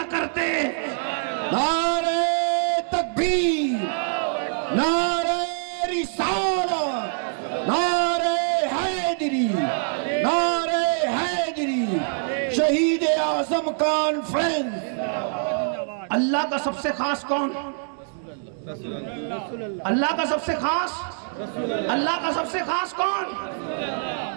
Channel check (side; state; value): left; silent; digital silence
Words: کرتے۔ نعرہ تکبیر، نعرہ رسالت، نعرہ حیدری، نعرہ حیدری، شہید اعظم کانفرنس۔ اللہ کا سب سے خاص کون؟ اللہ کا سب سے خاص، اللہ کا سب سے خاص کون؟